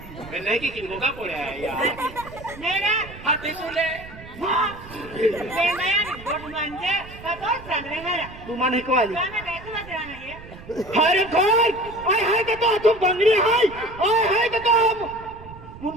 मैं नहीं कि किनको का पड़ा है यार हाथी तुले तू मन को वाली हरे घर आय हाय के तो तुम बंगड़ी हाय आय हाय के तो हम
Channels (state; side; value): noise; right; rumble, 17 dB below the sound